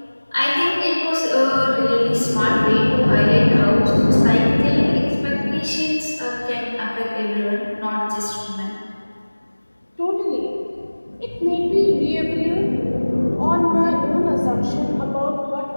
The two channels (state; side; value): inverted; both; correlation -1.00